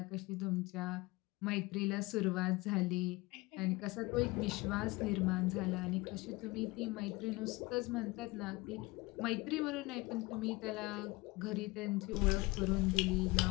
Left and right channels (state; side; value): quieter; right; 22.5 dB